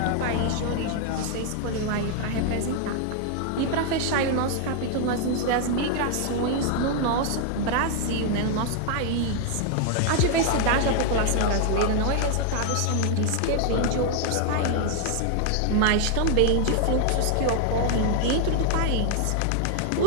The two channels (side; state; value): both; different; correlation 0.00